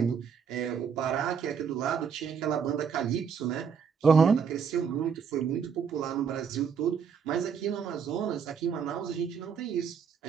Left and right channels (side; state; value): left; quieter; 6.7 dB